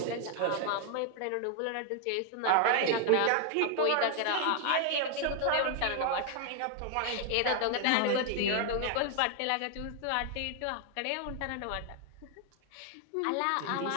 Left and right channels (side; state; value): both; different; correlation 0.00